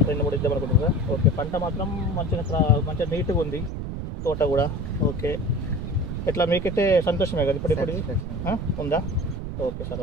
2-3 ఇద్దాం అనుకుంటున్నారా? ఓకే, పంట మాత్రం మంచిగా నీట్గా ఉంది, తోట కూడా. ఓకే, ఎట్లా మీకైతే సంతోషమే కదా ఇప్పుడు ఉందా? Okay sir,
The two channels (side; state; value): right; noise; rumble, 5 dB below the sound